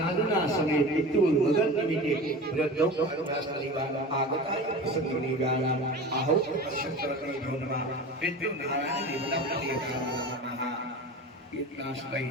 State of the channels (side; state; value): both; normal; correlation 0.33